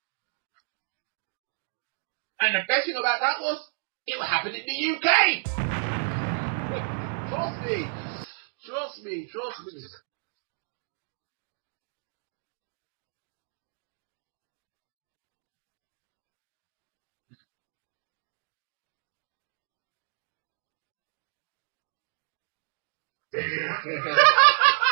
That was brutal, man. That was like really brutal. And the best thing about that was, it happened in the UK. Trust me. I just think that the Big Show will probably get the win, everybody, and he'll just get screwed. It won't be like what happened with Daniel Bryan, when everybody was like, "Oh shit!" It's going to be like, "Oh yeah, this now it's happened and it's gone." So that's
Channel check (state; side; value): silent; left; digital silence